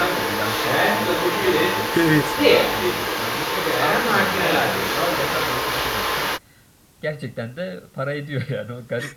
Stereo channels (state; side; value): identical; both; correlation 1.00